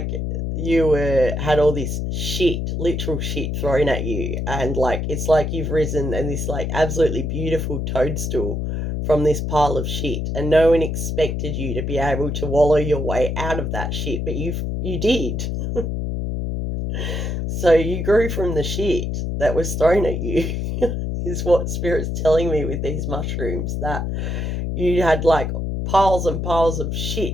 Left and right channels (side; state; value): left; noise; hum, 2 dB below the sound